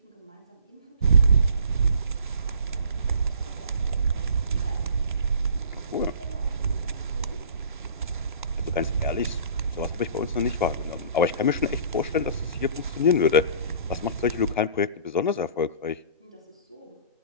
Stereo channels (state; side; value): inverted; both; correlation -0.46